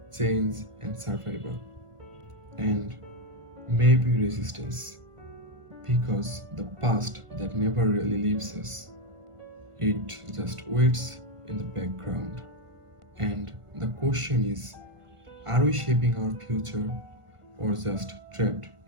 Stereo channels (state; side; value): late; left; 1.5 ms